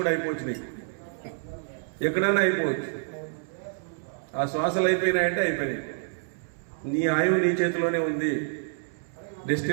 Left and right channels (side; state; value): left; silent; 59 dB below the other